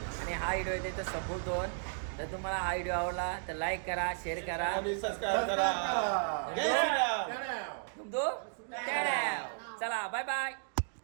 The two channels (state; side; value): silent; left; digital silence